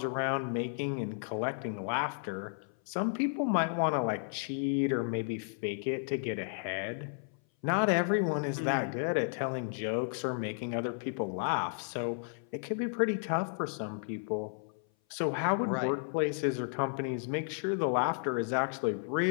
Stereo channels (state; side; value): silent; right; 56 dB below the other